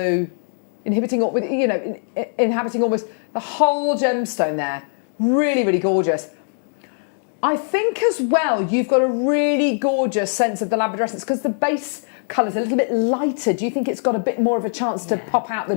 inhabiting almost the whole gemstone there. Really, really gorgeous. I think as well you've got a really gorgeous sense of the labradorescence because the base colour's a little bit lighter. Do you think it's got a bit more of a chance to pop out the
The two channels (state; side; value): silent; right; 65 dB below the other